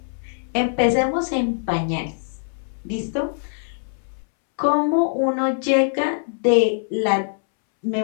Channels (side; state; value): right; silent; 64 dB below the other